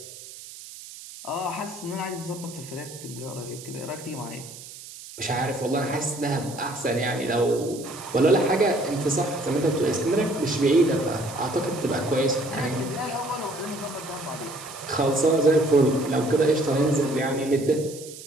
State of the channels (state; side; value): noise; right; hiss, 15 dB below the sound